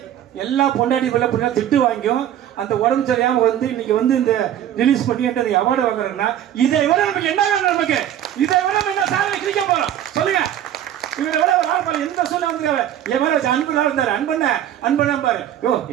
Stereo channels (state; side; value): quieter; left; 11.0 dB